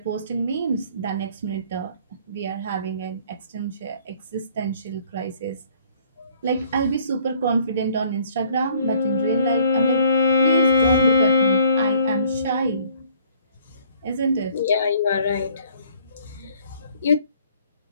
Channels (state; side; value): inverted; both; correlation -0.59